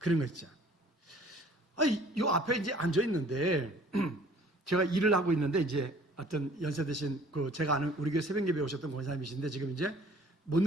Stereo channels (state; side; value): normal; both; correlation 0.53